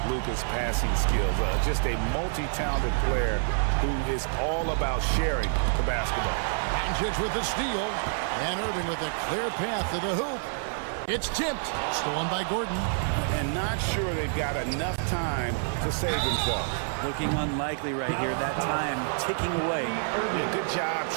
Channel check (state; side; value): silent; left; 55 dB below the other